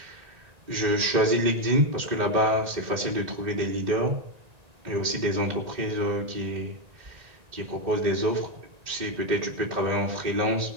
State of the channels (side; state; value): left; late; 1.9 ms